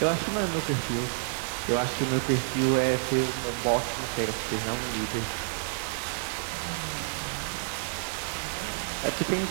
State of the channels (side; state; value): left; silent; digital silence